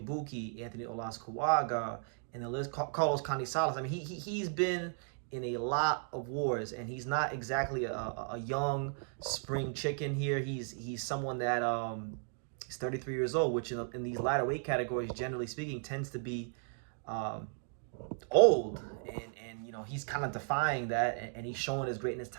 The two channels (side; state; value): left; silent; 54 dB below the other